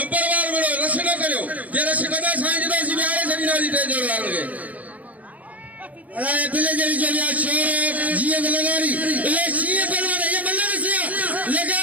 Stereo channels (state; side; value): late; left; 0.073 ms